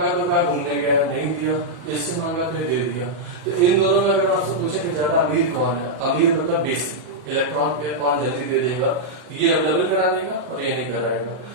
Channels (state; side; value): late; left; 40 ms